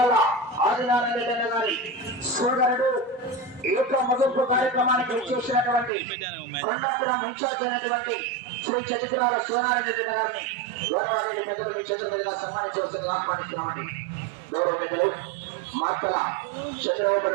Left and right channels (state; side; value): drops out; left; at 5.9 s